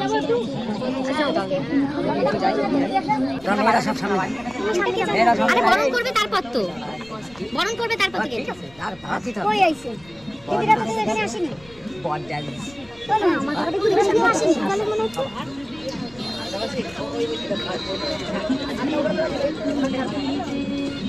বরণ করবে তারপর তো বরণ করবে তারপর আসেনি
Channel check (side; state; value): left; noise; rumble, 25 dB below the sound